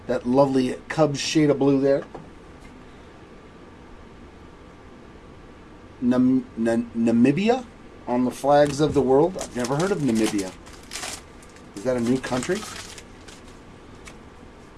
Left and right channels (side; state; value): both; identical; correlation 1.00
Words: That lovely Cubs shade of blue there. Namibia on the flags of the world. I've never heard of Namibia. Is that a new country?